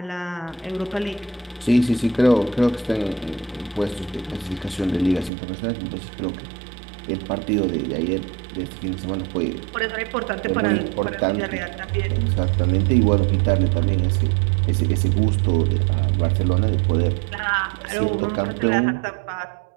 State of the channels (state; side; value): drops out; left; at 5.3 s